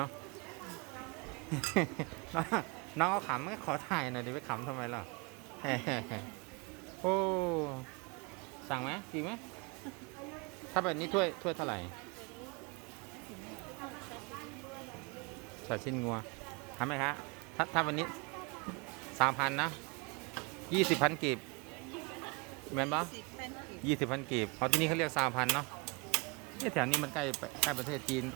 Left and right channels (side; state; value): left; quieter; 29.2 dB